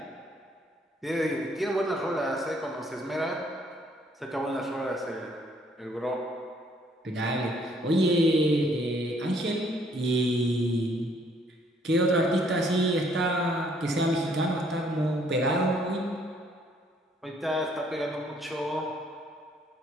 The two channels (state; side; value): normal; both; correlation 0.65